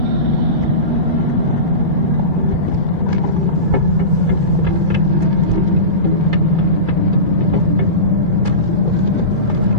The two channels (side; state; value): left; late; 2.3 ms